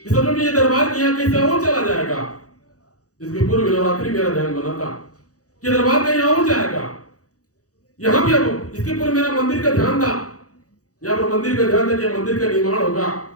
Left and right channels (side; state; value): right; late; 0.66 ms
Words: सच में ये दरबार की यहाँ कैसे और चला जाएगा। इसके पूर्व नवरात्रि मेरा ध्यान बना था कि दरबार कहीं और जाएगा, यहाँ भी अब इसके पूर्व मेरा मंदिर का ध्यान था, यहाँ पर मंदिर का ध्यान था कि मंदिर का निर्माण होगा,